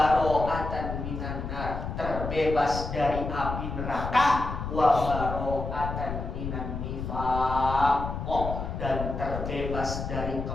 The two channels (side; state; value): left; noise; rumble, 5 dB below the sound